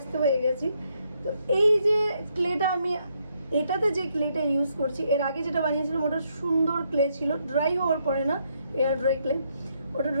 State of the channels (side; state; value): both; inverted; correlation -0.75